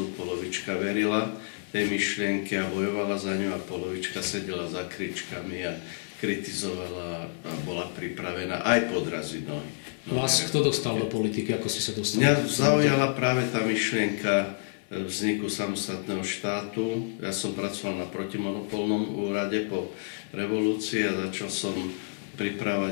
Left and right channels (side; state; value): right; silent; 57 dB below the other